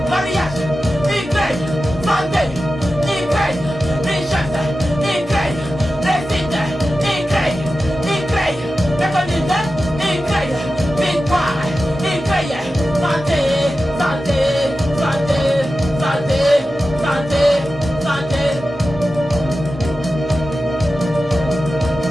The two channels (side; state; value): both; normal; correlation 0.93